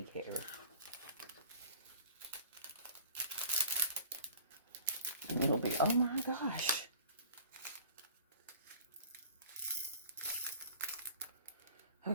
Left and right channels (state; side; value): inverted; both; correlation -0.47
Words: hair. And it'll be, oh my gosh.